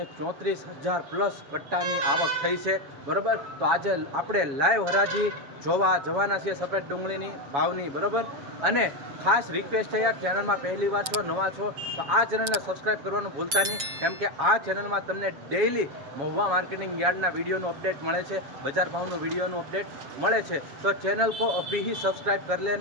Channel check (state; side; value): late; left; 7.3 ms